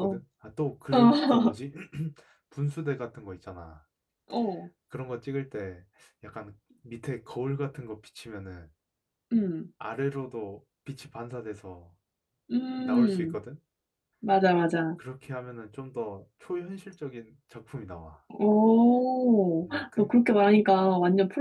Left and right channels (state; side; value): identical; both; correlation 1.00